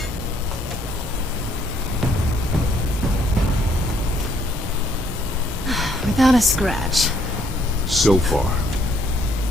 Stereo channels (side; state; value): both; normal; correlation 0.67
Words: Without a scratch. So far.